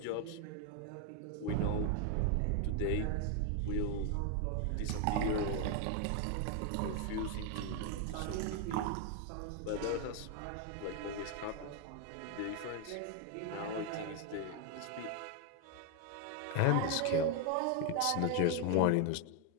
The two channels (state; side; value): different; both; correlation 0.01